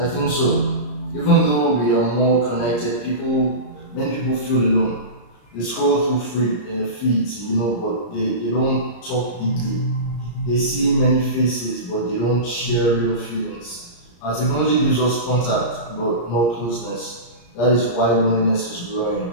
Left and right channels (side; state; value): right; late; 34 ms